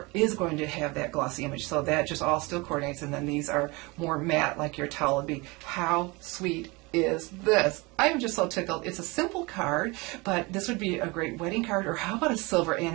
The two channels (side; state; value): left; quieter; 25.2 dB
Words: is going to have that glossy image. So that just all still coordinates, and then these are more matte like your towel would be. How sweet is this. I'm just so tickled. It's a simple card, but this would be a great wedding card, or how about a silver